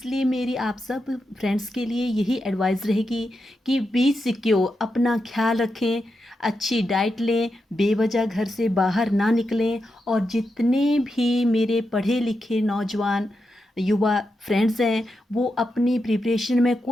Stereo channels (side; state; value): both; normal; correlation 0.87